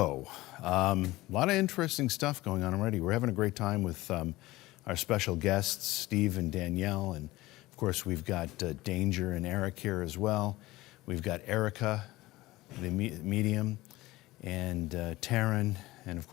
a lot of interesting stuff going on already. We're having a great time with our special guests, Steve and Danielle, and of course we've got Danger and Eric here as well. We've got Erica, the medium, and Taryn, and of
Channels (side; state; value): right; quieter; 18.7 dB